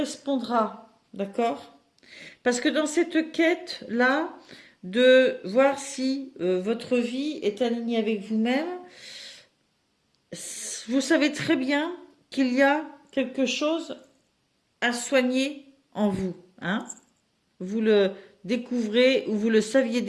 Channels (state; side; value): identical; both; correlation 1.00